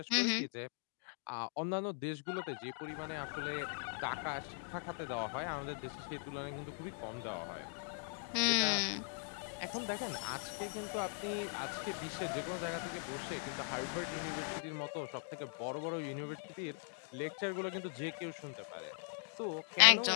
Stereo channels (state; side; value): silent; right; 51 dB below the other